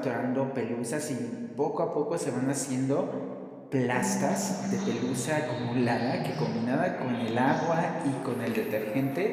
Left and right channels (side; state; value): both; identical; correlation 1.00